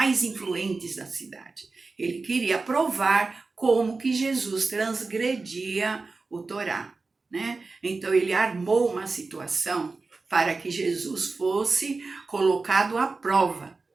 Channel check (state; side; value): quieter; left; 3.9 dB